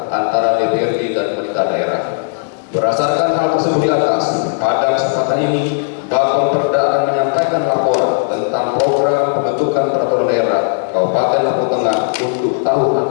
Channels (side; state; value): right; silent; digital silence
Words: antara DPRD dan pemerintah daerah. Berdasarkan hal tersebut di atas, pada kesempatan ini Bapemperda akan menyampaikan laporan tentang program pembentukan peraturan daerah Kabupaten Lampung Tengah untuk tahun